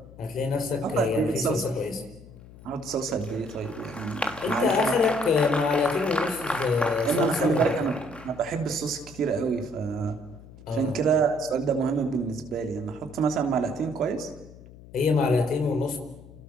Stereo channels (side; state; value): left; noise; hum, 19 dB below the sound